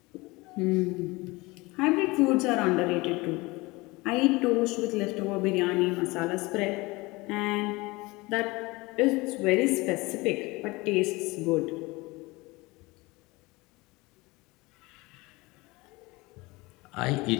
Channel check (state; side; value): quieter; right; 23.0 dB